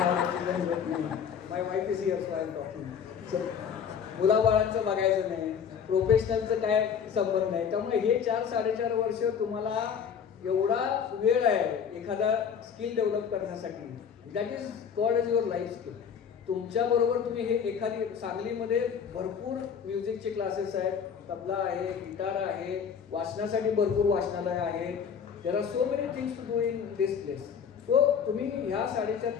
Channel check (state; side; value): quieter; right; 7.3 dB